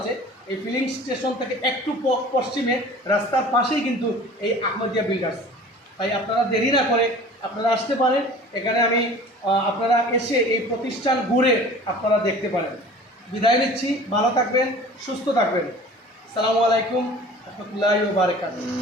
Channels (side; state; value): both; normal; correlation 0.43